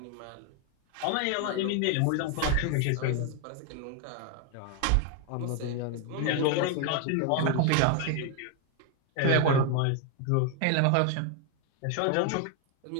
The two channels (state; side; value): different; both; correlation 0.01